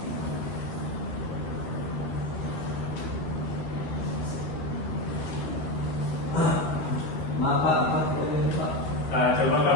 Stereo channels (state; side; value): late; right; 13 ms